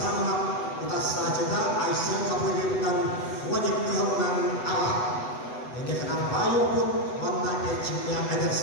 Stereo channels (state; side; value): late; right; 8.0 ms